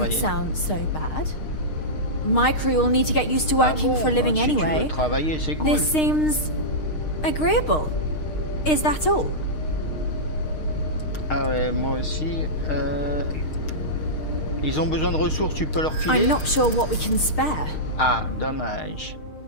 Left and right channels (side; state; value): right; late; 6.5 ms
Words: travailler. sound so bad. My crew will need to get used to working for a living si tu veux anyway. travailler, c'est cool. This seems agreeable. Is that all? Ah ouais, moi aussi. Ils ont besoin de ressources, tu peux leur filer. I'm not sure what we can spare. Ah, dommage.